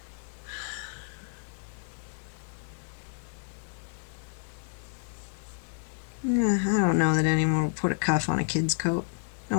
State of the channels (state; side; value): silent; right; 58 dB below the other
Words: Yeah, I don't know that anyone would put a cuff on a kid's coat. No